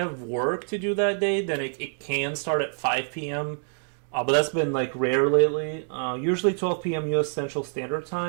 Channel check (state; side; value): silent; left; digital silence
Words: work to do that day. Then it can start at 5 p.m. But that's been like rare lately. Usually 12 p.m. U.S. Central Standard